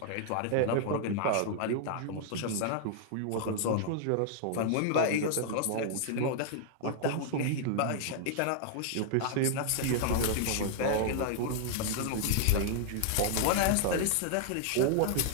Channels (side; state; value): both; different; correlation -0.01